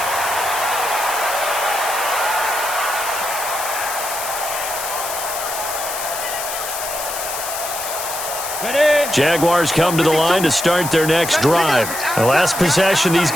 Jaguars come to the line to start their next drive. The last possession, these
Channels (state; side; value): noise; left; hiss, 6 dB below the sound